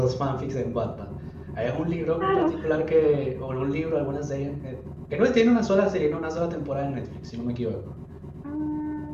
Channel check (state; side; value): identical; both; correlation 1.00